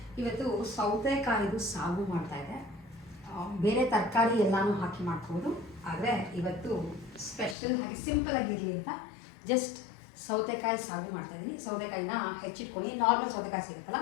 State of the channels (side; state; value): right; drops out; at 7.6 s